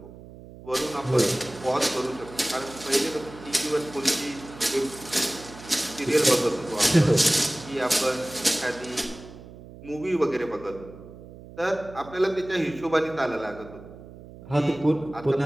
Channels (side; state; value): right; noise; hum, 17 dB below the sound